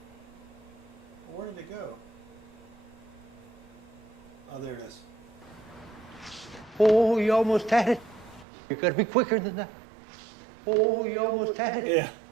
Where did it go? Oh, there it is. Oh, you almost had it. You gotta be quicker than that. Oh, you almost had it. Yeah,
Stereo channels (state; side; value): drops out; left; at 8.5 s